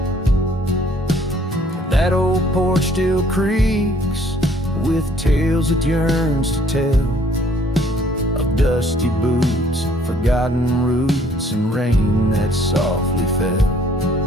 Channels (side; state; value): both; normal; correlation 0.60